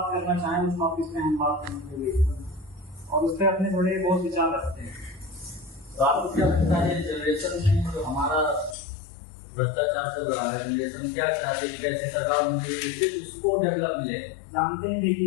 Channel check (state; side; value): drops out; right; at 8.8 s